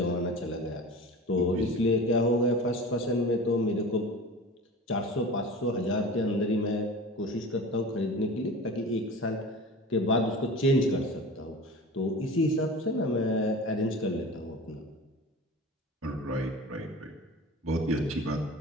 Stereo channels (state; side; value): normal; both; correlation 0.35